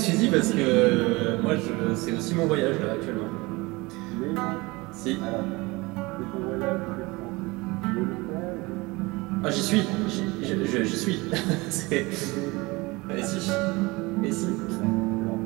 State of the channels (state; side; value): quieter; left; 23.4 dB